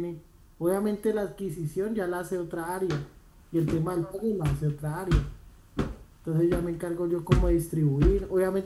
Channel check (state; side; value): identical; both; correlation 1.00